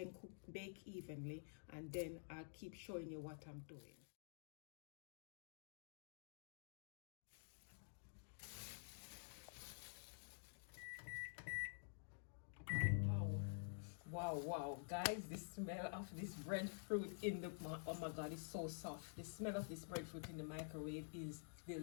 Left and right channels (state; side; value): silent; right; digital silence